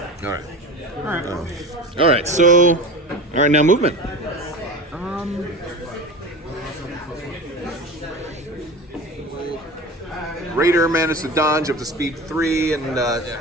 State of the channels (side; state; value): both; normal; correlation 0.31